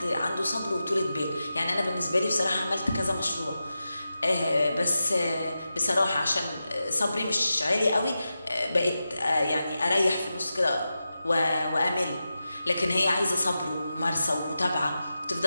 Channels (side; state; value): both; inverted; correlation -0.91